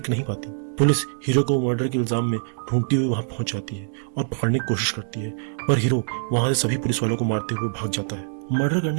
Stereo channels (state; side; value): silent; left; digital silence